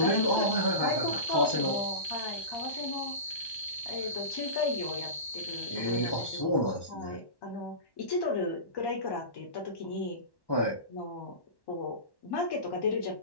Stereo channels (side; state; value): right; late; 1.1 ms